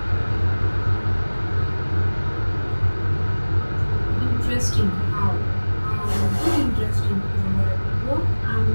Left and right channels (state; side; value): inverted; both; correlation -1.00